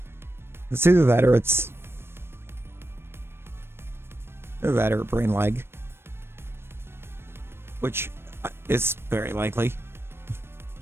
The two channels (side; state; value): left; late; 0.12 ms